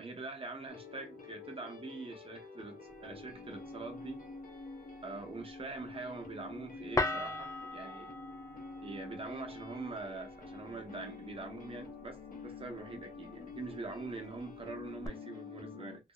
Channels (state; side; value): normal; both; correlation 0.50